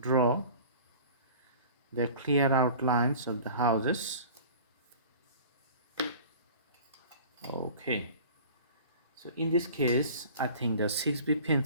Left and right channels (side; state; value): both; inverted; correlation -0.43